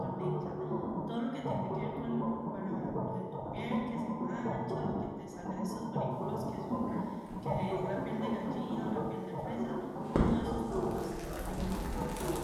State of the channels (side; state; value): both; identical; correlation 1.00